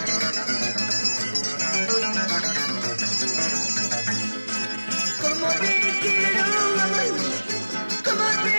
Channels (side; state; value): both; inverted; correlation -1.00